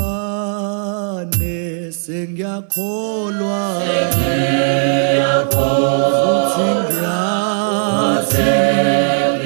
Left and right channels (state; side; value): silent; left; 61 dB below the other